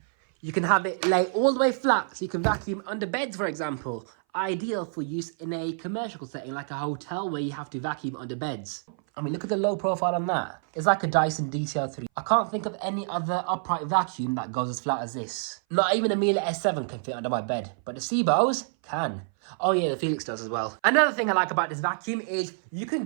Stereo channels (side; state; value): left; silent; 58 dB below the other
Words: you can have it lay all the way flat so you can vacuum under beds, for example. Ideal for use in a commercial setting like a hotel where you have to vacuum under beds. I mean, look at the low profile on that. It's like a Dyson DCL3. I can't think of any other upright vacuum that goes as flat as this. Not even a Miele S7 can fit under my bed, but the SIBOs can. Oh yeah, the Felix does as well. Another thing I like about this vacuum is you can